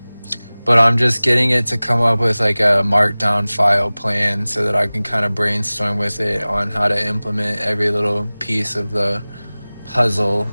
I'm just getting it to come up with like a markdown file plan so that I can kind of brainstorm with it on how to implement every little piece of the puzzle.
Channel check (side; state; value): both; inverted; correlation -0.99